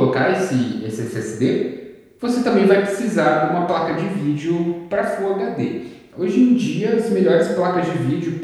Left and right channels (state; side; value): identical; both; correlation 1.00